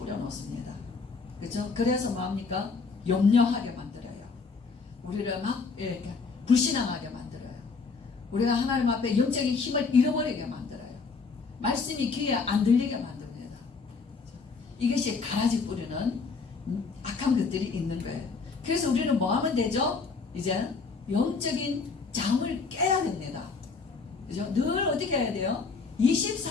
그렇죠? 그래서 뭐합니까? 염려하게 만들어요. 우리를 막 이렇게 불신앙하게 만들어요. 우리가 하나님 앞에 영적인 힘을 잃어버리게 만들어요. 말씀이 귀에 안 들리게 만듭니다. 이것이 가라지 뿌리는 악한 것들이 있는 거예요. 그래서 우리는 뭐 하면 되죠? 이제 영적인 잠을 깨야 됩니다. 그죠? 늘 어떻게 해야 돼요?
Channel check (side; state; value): right; quieter; 4.7 dB